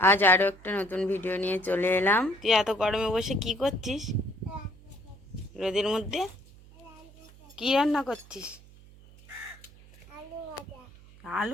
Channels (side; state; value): right; noise; hum, 22 dB below the sound